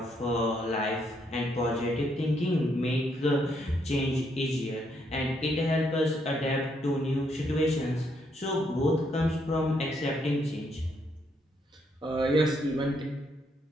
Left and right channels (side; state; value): both; normal; correlation 0.74